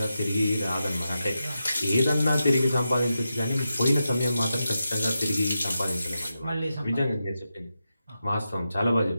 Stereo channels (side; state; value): both; inverted; correlation -0.89